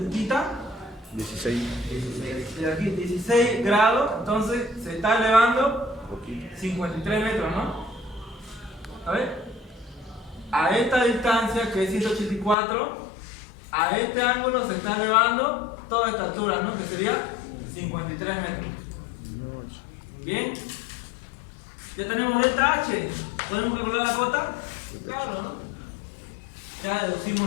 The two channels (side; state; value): right; drops out; at 12.6 s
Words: θ? 16. De aquí, 16 grados. Entonces se está elevando Poquito. 53 metros, ¿no? A ver. A esta distancia, que es 184, a este ángulo se está elevando toda esta altura, ¿no? Que sería 53 metros. Bien. Ya tenemos delta H. ¿Podemos calcular la cota? Claro, ¿no? Ya